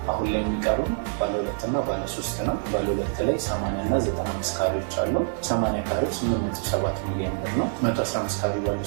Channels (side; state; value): left; silent; digital silence